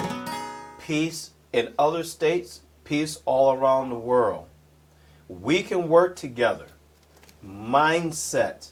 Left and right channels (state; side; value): identical; both; correlation 1.00